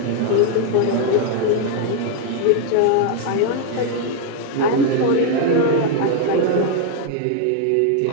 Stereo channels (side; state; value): both; different; correlation 0.00